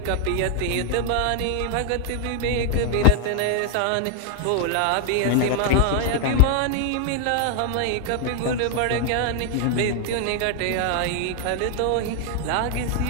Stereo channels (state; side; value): different; both; correlation 0.00